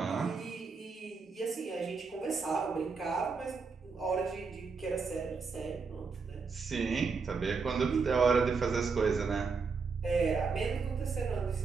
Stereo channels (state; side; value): quieter; left; 4.9 dB